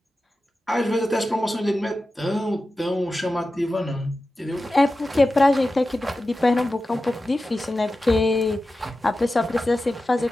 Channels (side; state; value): both; normal; correlation 0.93